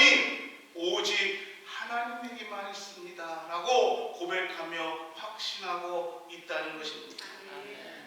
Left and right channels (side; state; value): both; identical; correlation 1.00